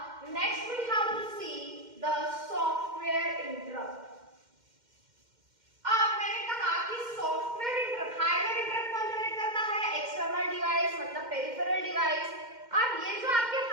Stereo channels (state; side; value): late; left; 2.1 ms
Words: next we have to see the software interrupt. अब मैंने कहा कि सॉफ्टवेयर इंटरप्ट, हार्डवेयर इंटरप्ट कौन जनरेट करता है? एक्सटर्नल डिवाइस, मतलब पेरिफेरल डिवाइस। अब ये जो आपके